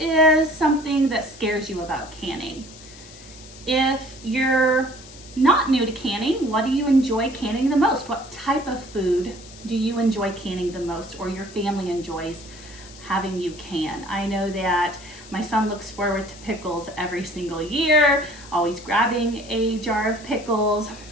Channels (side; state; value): left; noise; hiss, 19 dB below the sound